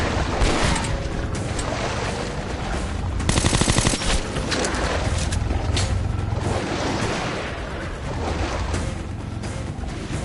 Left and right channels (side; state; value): both; identical; correlation 1.00